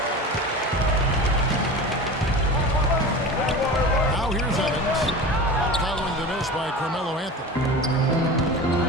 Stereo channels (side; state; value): both; normal; correlation 0.32